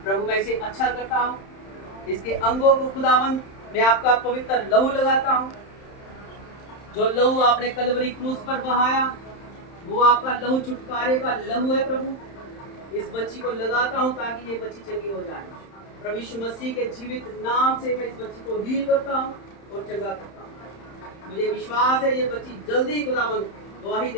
प्रभु मैं इसे अच्छा करता हूँ। इसके अंगों को खुदावंद मैं आपका पवित्र लहू लगाता हूँ। जो लहू आपने कलवरी क्रूस पर बहाया, वो आपका लहू छुटकारे का लहू है। प्रभु इस बच्ची को लगाता हूँ ताकि ये बच्ची चंगी हो जाए। प्रभु यीशु मसीह के जीवित नाम से मैं इस बच्ची को हील करता हूँ और चंगा करता हूँ। मुझे विश्वास है ये बच्ची जल्दी खुदावंद गवाही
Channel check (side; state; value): right; late; 31 ms